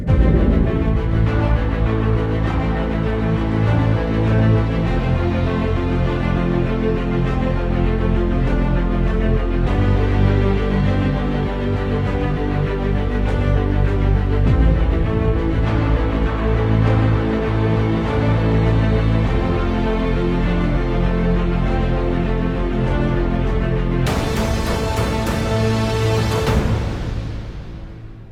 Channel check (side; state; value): both; identical; correlation 1.00